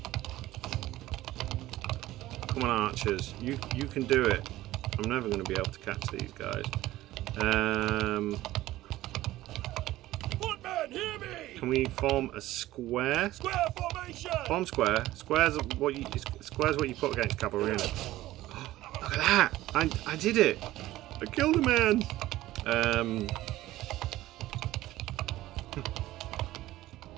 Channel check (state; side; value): quieter; left; 16.0 dB